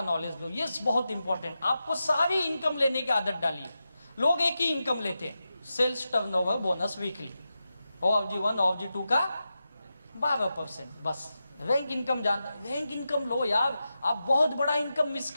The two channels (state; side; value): inverted; both; correlation -0.90